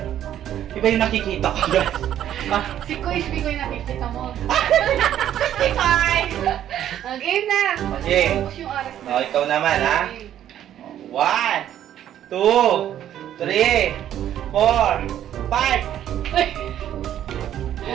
Iba yung nakikita ko guys. Ah, Si Kuis, Mikoy nakikita mo. Mikoy! Game na! Okay. Tapos yung oras na. Oh, ikaw naman ha. 1, 2, 3, 4, 5.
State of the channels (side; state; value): left; quieter; 11.1 dB